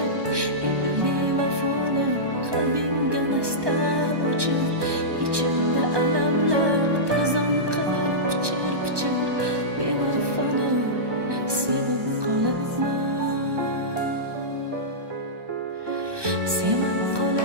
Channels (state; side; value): late; left; 1.2 ms